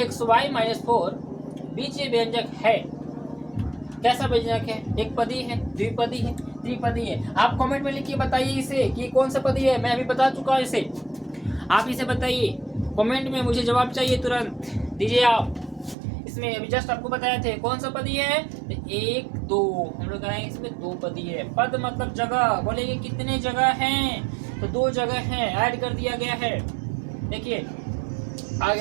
- 4 बीजीय व्यंजक है। कैसा व्यंजक है? एक पदी है, द्विपदी है, त्रिपदी है। आप कमेंट में लिखिए, बताइए इसे कि कौन सा पदी है। मैं अभी बता चुका हूँ इसे, आप इसे बताइए कमेंट में, मुझे जवाब चाहिए, तुरंत दीजिए आप। इसमें अभी जस्ट आपको बताए थे कौन सा पदी है। 1 2 हम लोग कहेंगे इसमें 2 पदी है। पद मतलब जगह, बोलेंगे कितने जगह हैं? तो 2 जगह हैं, ऐड कर दिया गया है। देखिए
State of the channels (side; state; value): left; drops out; at 16.0 s